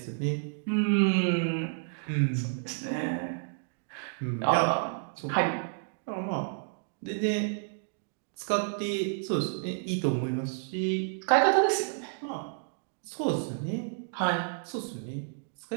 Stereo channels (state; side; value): silent; left; digital silence